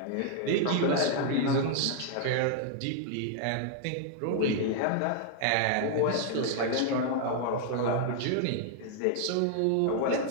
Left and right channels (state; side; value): different; both; correlation 0.00